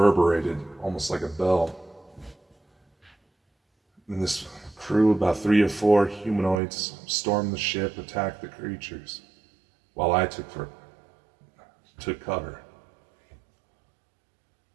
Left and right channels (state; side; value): drops out; left; at 6.6 s